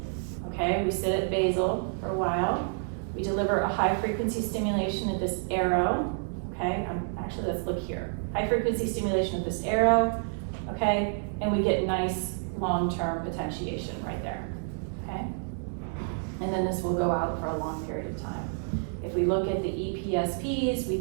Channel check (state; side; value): silent; left; 59 dB below the other